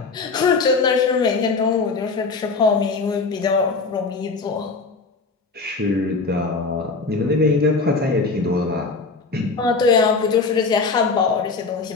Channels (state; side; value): quieter; right; 4.2 dB